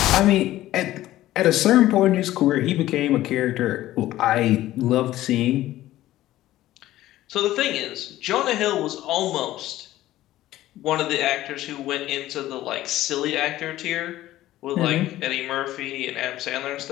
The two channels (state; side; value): quieter; right; 14.9 dB